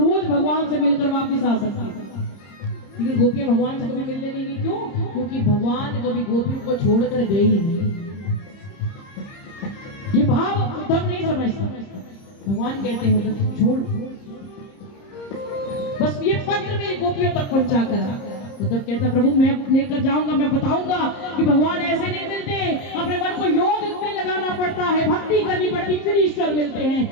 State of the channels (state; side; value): late; right; 30 ms